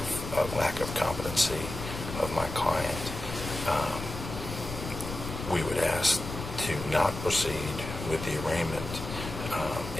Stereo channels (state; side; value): noise; left; rumble, 8 dB below the sound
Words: lack of competency of my client. We would ask to not proceed with the arraignment